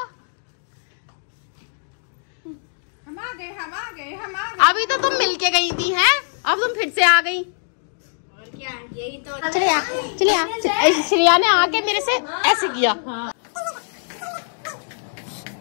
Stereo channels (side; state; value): right; silent; digital silence